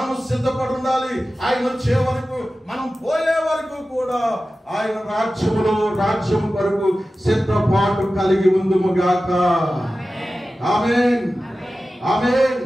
సిద్ధపడి ఉండాలి. ఆయన వచ్చే వరకు, మనం పోయే వరకు కూడా ఆయన రాజ్యం కొరకు సిద్ధపాటు కలిగి ఉందుము గాక. ఆమేన్, ఆమేన్.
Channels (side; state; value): both; normal; correlation 0.95